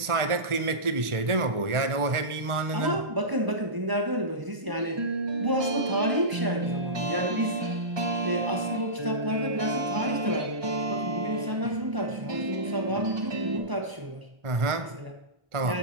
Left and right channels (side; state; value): left; late; 1.4 ms